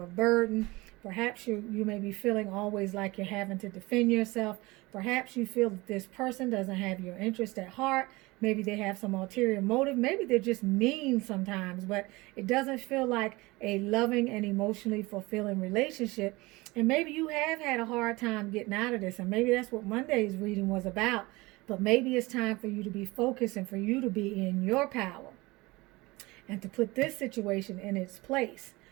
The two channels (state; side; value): quieter; left; 22.3 dB